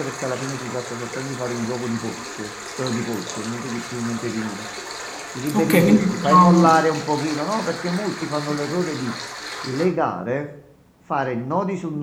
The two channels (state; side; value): identical; both; correlation 1.00